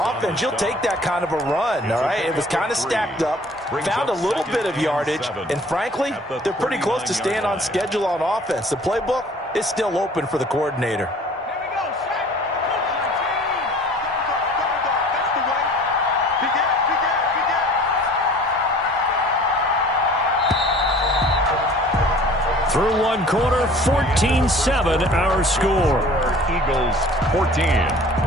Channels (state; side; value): normal; both; correlation 0.49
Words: you'll take that kind of a run, all right? It was kind of stacked up, found a little bit of yardage, and frankly, they're pretty close to staying on schedule on offense. The playbook is still open for the coordinator. Through 1 quarter, 14-7 our score. Eagles 14,